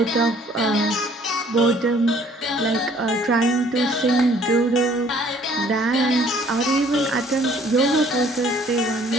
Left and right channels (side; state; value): both; normal; correlation 0.58